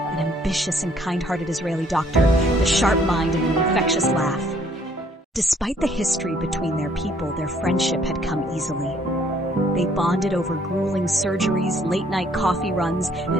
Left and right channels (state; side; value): normal; both; correlation 0.63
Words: ambitious and kind-hearted Israeli doctor, with a sharp mind and an infectious laugh. Despite the history between their people, their friendship had come easily. They bonded over grueling surgeries, late-night coffee runs,